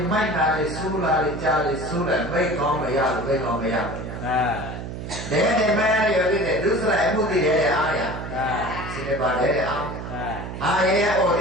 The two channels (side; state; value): right; noise; hum, 8 dB below the sound